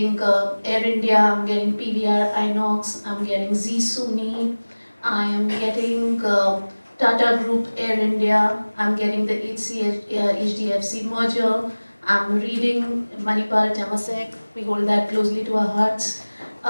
Air India, I'm getting PVR Inox, I'm getting Z Suni, I am getting Tata Group Air India, I'm getting the HDFC merger, I'm reading Manipal Temasek, we hold that closely to our hearts.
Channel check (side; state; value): both; inverted; correlation -1.00